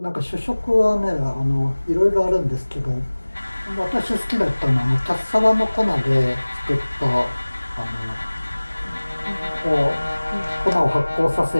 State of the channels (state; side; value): inverted; both; correlation -1.00